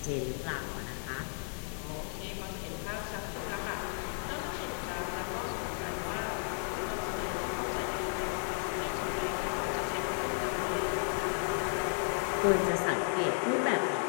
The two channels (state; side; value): silent; right; 55 dB below the other